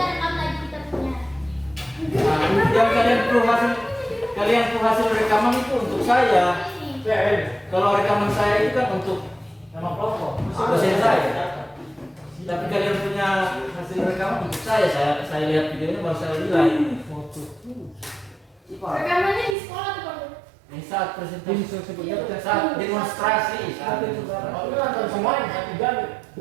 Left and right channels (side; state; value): left; drops out; at 19.6 s